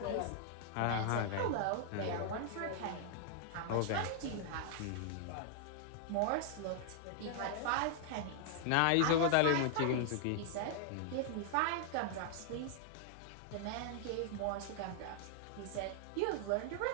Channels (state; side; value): different; both; correlation 0.00